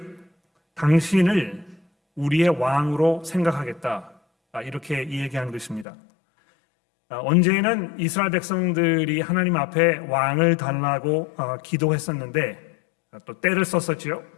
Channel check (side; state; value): right; drops out; at 5.9 s